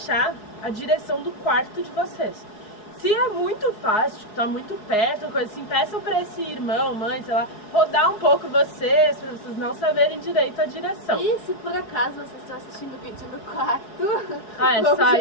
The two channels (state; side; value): late; right; 4.7 ms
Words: a direção do quarto de vocês. Se é muito fácil, tipo, tá muito perto, coisa assim, peçam pra esse irmão, mãe, sei lá, rodar um pouco vocês, pra vocês não saberem direito a direção. E se por acaso vocês estão assistindo o vídeo no quarto, o